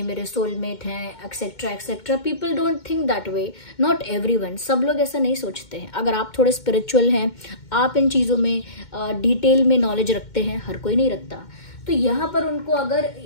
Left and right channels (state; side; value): late; right; 2.2 ms